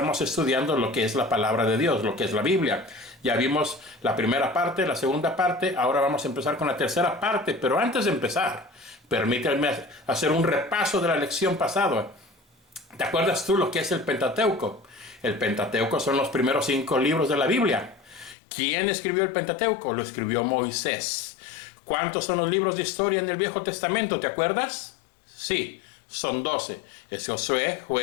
estudiando lo que es la palabra de Dios, lo que es la Biblia. Ya vimos la primera parte, la segunda parte, ahora vamos a empezar con la tercera parte, pero antes de empezar, permítanme hacer un repaso de la lección pasada. ¿Te acuerdas tú lo que es el Pentateuco? El Pentateuco son los primeros 5 libros de la Biblia. ¿Quién escribió el Pentateuco? Lo escribió Moisés. ¿Cuántos son los libros de historia en el Viejo Testamento? ¿Te acuerdas? Sí, son 12. Es Josué,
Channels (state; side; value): drops out; right; at 18.4 s